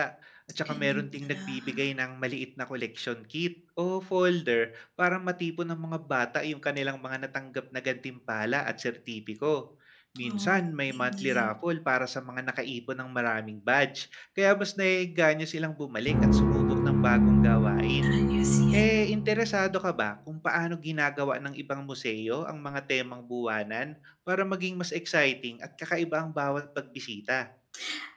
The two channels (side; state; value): both; identical; correlation 1.00